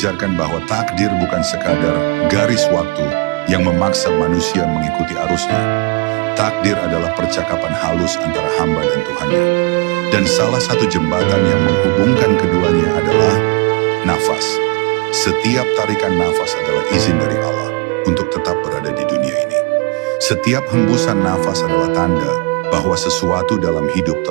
bahwa takdir bukan sekadar garis waktu yang memaksa manusia mengikuti arusnya. Takdir adalah percakapan halus antara hamba dan Tuhannya. Dan salah satu jembatan yang menghubungkan keduanya adalah nafas. Setiap tarikan nafas adalah izin dari Allah untuk tetap berada di dunia ini. Setiap hembusan nafas adalah tanda bahwa sesuatu dalam hidup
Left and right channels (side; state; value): left; quieter; 28.8 dB